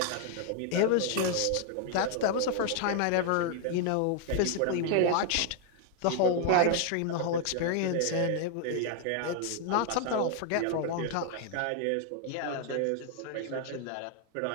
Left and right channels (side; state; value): both; different; correlation 0.00